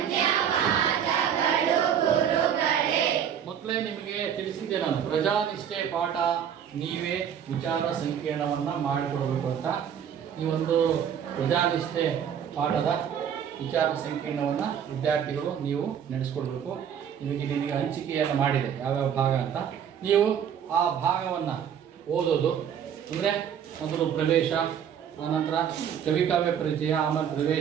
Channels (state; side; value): quieter; left; 8.6 dB